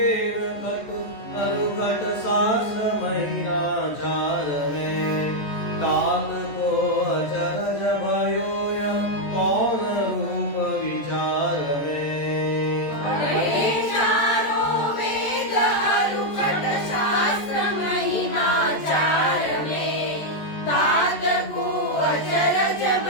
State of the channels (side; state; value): right; late; 14 ms